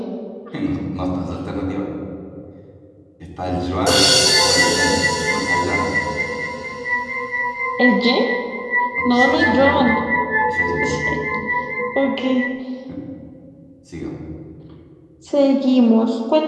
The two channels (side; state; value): both; identical; correlation 1.00